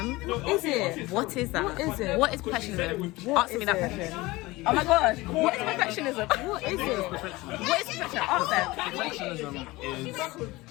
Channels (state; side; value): quieter; right; 20.8 dB